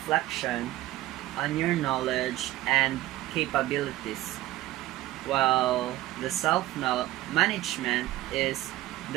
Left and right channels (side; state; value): left; quieter; 16.2 dB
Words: on your knowledge and capabilities, while the self-management is